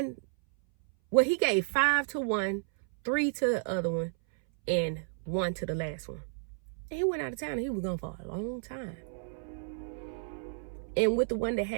he gave 5 to one, 3 to the other one, and 1 to the last one. And he went out of town, and he was gone for a long time. And with the one that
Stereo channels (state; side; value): silent; left; 57 dB below the other